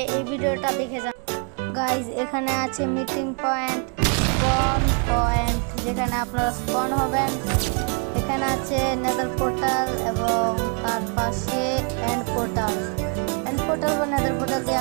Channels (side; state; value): left; quieter; 39.0 dB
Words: এই ভিডিওটা দেখে যান। গাইস এখানে আছে মিটিং পয়েন্ট, স্পন পয়েন্ট যেখানে আপনারা স্পন হবেন। এখানে আছে নেদার পোর্টাল এবং তার পাশে এন্ড পোর্টাল। এন্ড পোর্টাল বা নেদার পোর্টাল দিয়ে